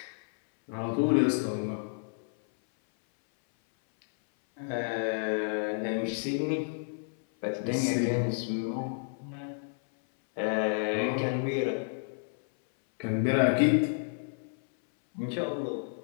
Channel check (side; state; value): right; silent; 58 dB below the other